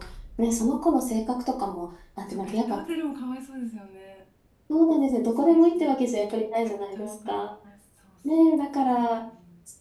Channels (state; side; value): identical; both; correlation 1.00